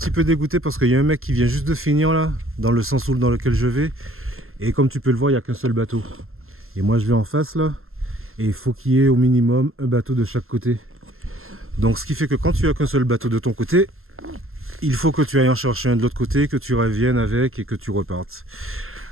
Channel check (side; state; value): left; late; 0.61 ms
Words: peu dégoûté parce qu'il y a un mec qui vient juste de finir là, dans le sens dans lequel je vais. Et comme tu peux le voir, il n'y a qu'un seul bateau. Et moi je vais en face là. Et il faut qu'il y ait au minimum un bateau de chaque côté. Donc ce qui fait que quand tu as qu'un seul bateau de ton côté, il faut que tu ailles en chercher un de l'autre côté, que tu reviennes avec et que tu repartes.